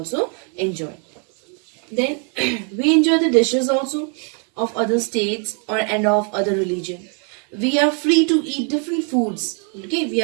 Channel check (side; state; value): left; quieter; 39.6 dB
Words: enjoy. Then we enjoy the dishes also of other states and of other religion. We are free to eat different foods. Okay, we